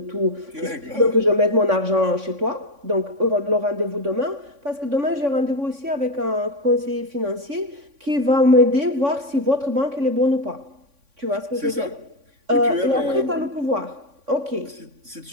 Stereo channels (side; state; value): left; late; 3.6 ms